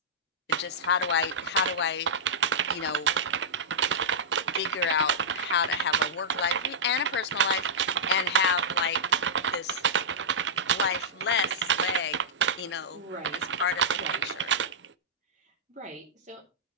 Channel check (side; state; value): both; normal; correlation -0.12